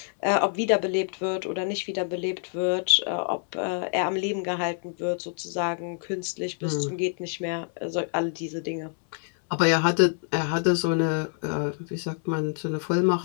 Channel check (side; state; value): right; silent; 60 dB below the other